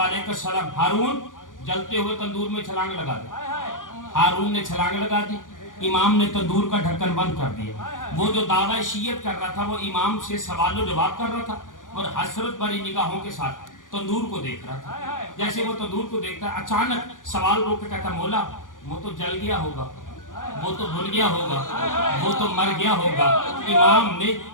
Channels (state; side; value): late; right; 0.88 ms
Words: السلام. ہارون جلتے ہوئے تندور میں چھلانگ لگا دی. ہارون نے چھلانگ لگا دی. امام نے تندور کا ڈھکن بند کر دیا. وہ جو دعویٰ شیعت کر رہا تھا وہ امام سے سوال و جواب کر رہا تھا اور حسرت بھری نگاہوں کے ساتھ تندور کو دیکھ رہا تھا. جیسے وہ تندور کو دیکھتا ہے اچانک سوال روک کے کہتا مولا وہ تو جل گیا ہوگا, وہ تو بھن گیا ہوگا, وہ تو مر گیا ہوگا. امام نے